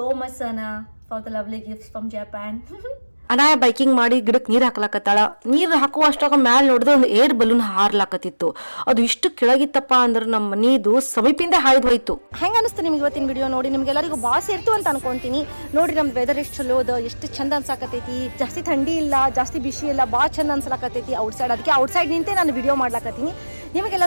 much Sana for the lovely gifts from Japan Anaya biking ಮಾಡಿ ಗಿಡಕ್ಕೆ ನೀರು ಹಾಕ್ಲಾಕತ್ತಾಳ ನೀರು ಹಾಕುವಷ್ಟಾಗ ಮ್ಯಾಲ ನೋಡಿದ್ರೆ ಒಂದು ಏರ್ ಬಲೂನ್ ಹಾರ್ಲಾಕತ್ತಿತ್ತು ಅದು ಇಷ್ಟು ಕೆಳಗಿತ್ತಪ್ಪ ಅಂದ್ರೆ ನಮ್ಮ ಮನಿದು ಸಮೀಪಿಂದ ಹಾಯ್ದು ಹೋಯ್ತು ಹೆಂಗ ಅನಿಸ್ತು ನಿಮ್ಗೆ ಇವತ್ತಿನ ವಿಡಿಯೋ ನೋಡಿ ನಿಮ್ಗೆಲ್ಲರಿಗೂ ಬಾಸ್ ಇರ್ತು ಅಂತ ಅನ್ಕೊಂತೀನಿ ನೋಡಿ ನಮ್ ವೆದರ್ ಎಷ್ಟು ಚಲೋ ಅದ ಎಷ್ಟು ಚಂದ ಅನ್ಸಾಕತೈತಿ ಜಾಸ್ತಿ ಥಂಡಿ ಇಲ್ಲ ಜಾಸ್ತಿ ಬಿಸಿ ಇಲ್ಲ ಭಾಳ ಚಂದ ಅನ್ಸಲಾಕತೈತಿ ಔಟ್ಸೈಡ್ ಅದಕ್ಕೆ ಔಟ್ಸೈಡ್ ನಿಂತೆ ನಾನು ವಿಡಿಯೋ ಮಾಡ್ಲಾಕತ್ತೀನಿ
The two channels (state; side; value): inverted; both; correlation -1.00